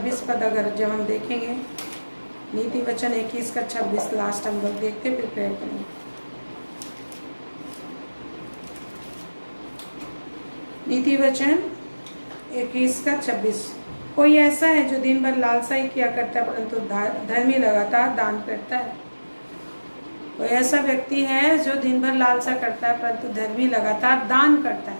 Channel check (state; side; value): inverted; both; correlation -1.00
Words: पद अगर जब हम देखेंगे, नीति वचन 21 का 26 लास्ट हम लोग देखते फिर प्रेयर करेंगे। नीति वचन 21 का 26, कोई ऐसा है जो दिन भर लालसा ही किया करता है परंतु धर्मी लगातार दान करता है। कोई ऐसा व्यक्ति है जो दिन भर लालसा करता है परंतु धर्मी लगातार दान करता